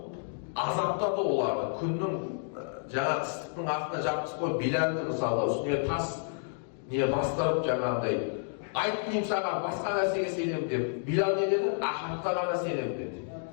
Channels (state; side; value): silent; right; digital silence